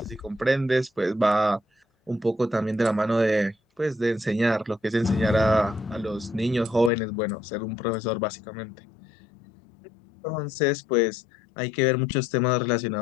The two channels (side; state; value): right; drops out; at 6.9 s